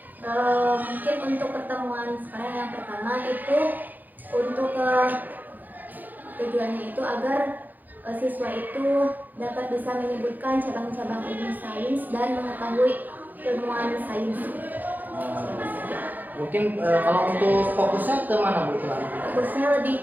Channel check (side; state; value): left; late; 0.084 ms